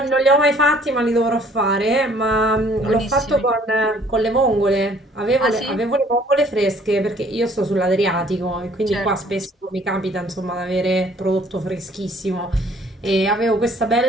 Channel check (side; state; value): both; normal; correlation 0.58